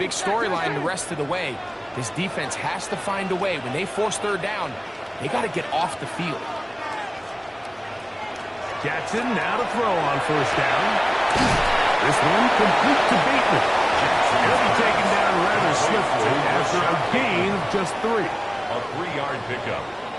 storyline the rest of the way. This defense has to find a way. When they force third down, they got to get off the field. Jackson now to throw on first down. This one complete to Bateman. He'll be taken down rather swiftly after a gain of just 3. A 3-yard pickup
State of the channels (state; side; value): identical; both; correlation 1.00